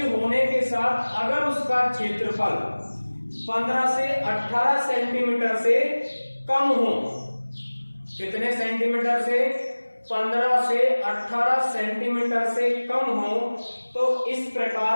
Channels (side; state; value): both; inverted; correlation -1.00